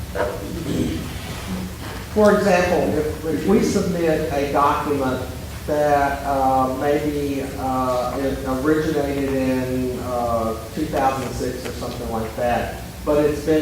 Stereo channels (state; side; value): identical; both; correlation 1.00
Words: For example, if we submit a document that maybe it originated in 2006 or something like that, but it's